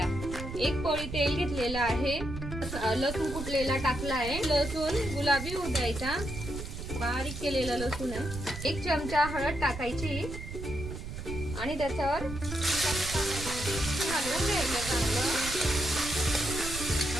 1 पोळी तेल घेतलेलं आहे, लसूण कुटलेला टाकला आहे, लसूण गुलाबी होऊ द्यायचा, बारीक केलेला लसूण आहे। 1 चमचा हळद टाकायची आणि त्याच्यावर हलवून घ्यायचं चांगलं।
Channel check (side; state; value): right; noise; rumble, 8 dB below the sound